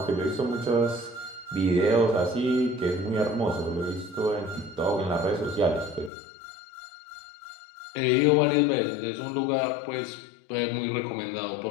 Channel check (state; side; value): drops out; right; at 6.1 s